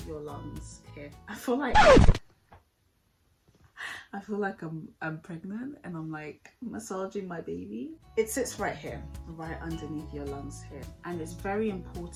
your lungs here. I feel like I'm pregnant and I'm like massaging my baby. It sits right here, right underneath your lungs here. And it's very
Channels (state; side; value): identical; both; correlation 1.00